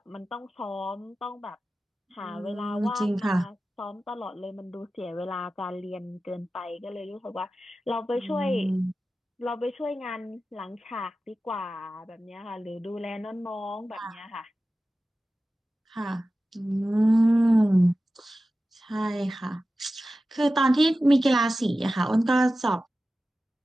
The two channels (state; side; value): normal; both; correlation 0.94